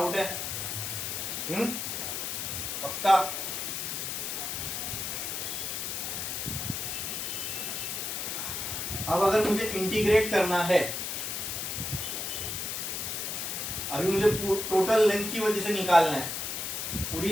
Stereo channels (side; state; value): left; noise; hiss, 3 dB below the sound